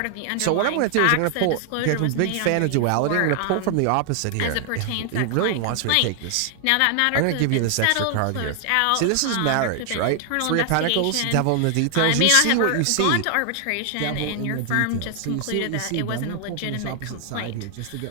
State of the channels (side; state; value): both; different; correlation 0.00